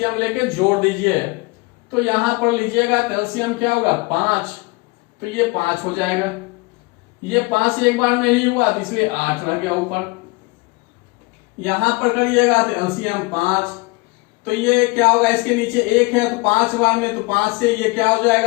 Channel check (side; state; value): right; quieter; 25.6 dB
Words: लेके जोड़ दीजिए तो यहां पर लीजिएगा एलसीएम क्या होगा 5, तो ये 5 हो जाएगा। ये 5 एक बार में ही हुआ तो इसलिए 8 रह गया ऊपर। यहां पर करिएगा तो एलसीएम 5, तो ये क्या होगा इसके नीचे 1 है तो 5 बार में, तो 5 से ये क्या हो